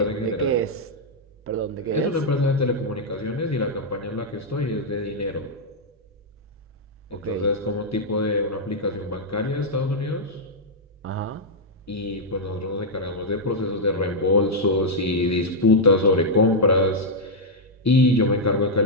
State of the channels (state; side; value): normal; both; correlation -0.04